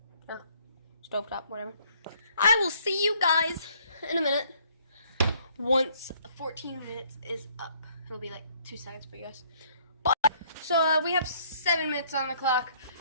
Or stove top, whatever. I will see you guys in a minute. Once 14 minutes is up. It'll be like 2 seconds for you guys. So we have 7 minutes on the clock.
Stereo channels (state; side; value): inverted; both; correlation -0.63